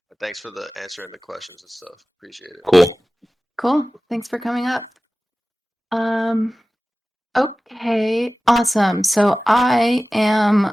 thanks for the answering the questions and stuff. Appreciate it. Cool. Cool. Thanks for coming up. Okay, awesome. So I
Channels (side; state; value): both; normal; correlation 0.97